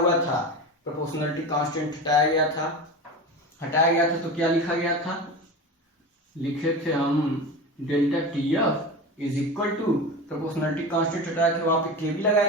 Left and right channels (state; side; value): normal; both; correlation 0.27